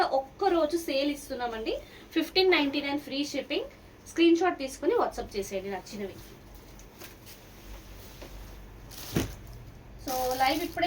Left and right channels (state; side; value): identical; both; correlation 1.00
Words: ఒక్కరోజు సేల్ ఇస్తున్నామండి. 1599 ఫ్రీ షిప్పింగ్. స్క్రీన్ షాట్ తీసుకుని వాట్సాప్ చేసేయండి నచ్చినవి. సో లైవ్